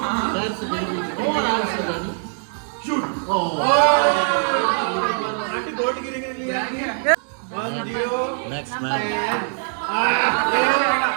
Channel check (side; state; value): left; silent; 64 dB below the other